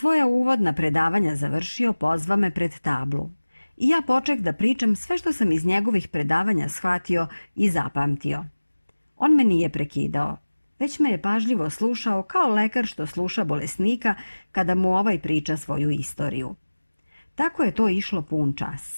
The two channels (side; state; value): both; inverted; correlation -1.00